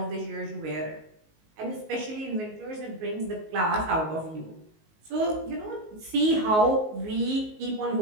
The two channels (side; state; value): left; late; 19 ms